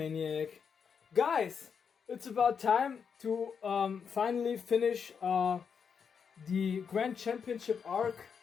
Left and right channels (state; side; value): quieter; right; 6.6 dB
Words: Guys, it's about time to finally finish the Grand Championship arc